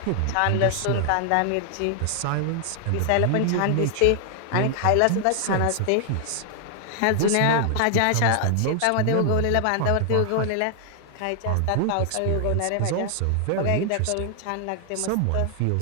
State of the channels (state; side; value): different; both; correlation 0.00